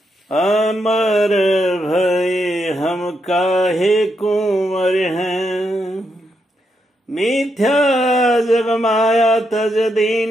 अमर भय हम काहे कुंवर हैं, मिथ्या जग माया तज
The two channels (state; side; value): normal; both; correlation 0.81